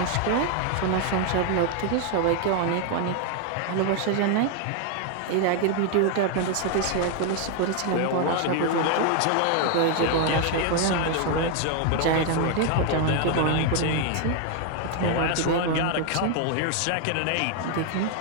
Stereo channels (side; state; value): both; different; correlation 0.01